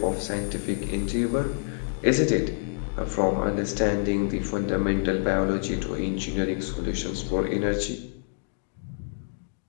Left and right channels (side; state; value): right; silent; digital silence